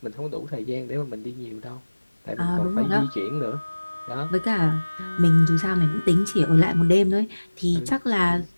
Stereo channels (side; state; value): both; inverted; correlation -1.00